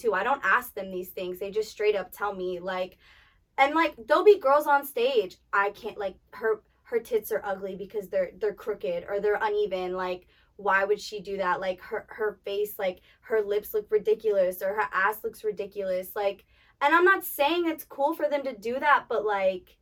I don't ask them these things. They just straight up tell me, like, and like, there'll be girls on stage, I can't, like, her tits are ugly because they're crooked or they're uneven. Like, why would she do that? Like, her face, like, her lips look ridiculous or her ass looks ridiculous. Like, and I'm not saying it's cool for them to do that, but, like,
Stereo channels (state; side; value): identical; both; correlation 1.00